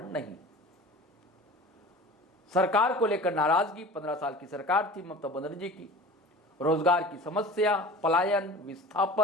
नहीं। सरकार को लेकर नाराजगी, 15 साल की सरकार थी ममता बनर्जी की, रोजगार की समस्या, पलायन,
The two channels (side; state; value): both; normal; correlation 0.39